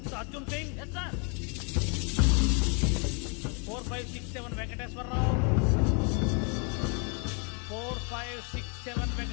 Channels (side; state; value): right; quieter; 36.0 dB